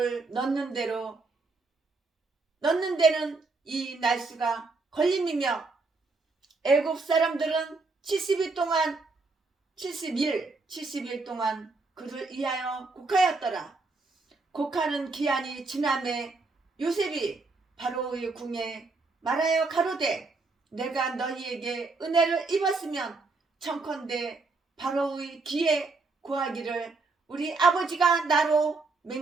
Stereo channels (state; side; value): quieter; left; 3.8 dB